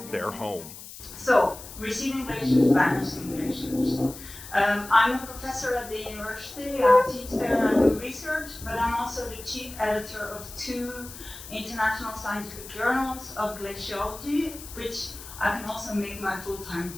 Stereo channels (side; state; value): left; noise; hiss, 14 dB below the sound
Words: their home. So, Receding Glaciers, Vanishing Glaciers. I'm a professor at the university. I teach there and do research, but I'm also the chief editor of 2 international scientific journals of glaciology, which I can also make my full-time